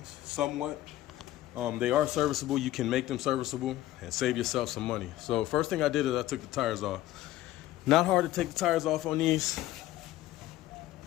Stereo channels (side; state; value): right; quieter; 15.0 dB